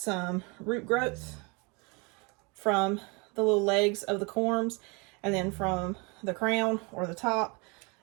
root growth from the little legs of the corms, and then from the crown or the top,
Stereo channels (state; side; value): quieter; left; 30.0 dB